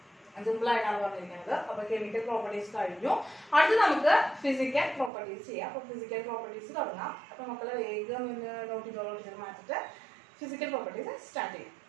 സിമ്പിൾ ആയിട്ടാണ് പറഞ്ഞിരിക്കുന്നത്. അപ്പൊ കെമിക്കൽ പ്രോപ്പർട്ടീസ് കഴിഞ്ഞു. അടുത്ത് നമുക്ക് ഫിസിക്കൽ പ്രോപ്പർട്ടീസ് ചെയ്യാം. അപ്പൊ ഫിസിക്കൽ പ്രോപ്പർട്ടീസ് തുടങ്ങാം. അപ്പൊ മക്കളെ വേഗം നോട്ട് ചെയ്ത് മാറ്റിട്ട് ഫിസിക്കൽ പ്രോപ്പർട്ടീസ് സ്റ്റാർട്ട് ചെയ്യാം.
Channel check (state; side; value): drops out; left; at 5.1 s